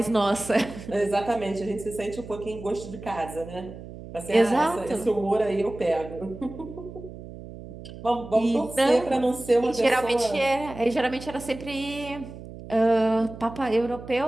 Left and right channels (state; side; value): noise; right; hum, 14 dB below the sound